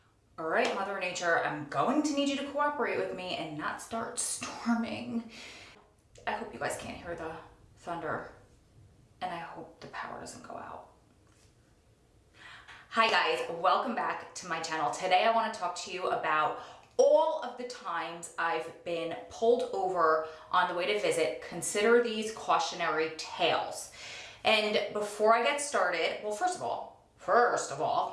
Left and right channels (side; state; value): both; identical; correlation 1.00